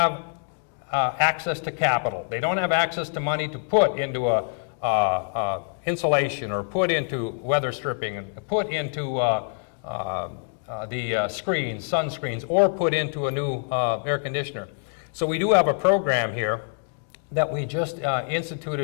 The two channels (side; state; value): right; silent; digital silence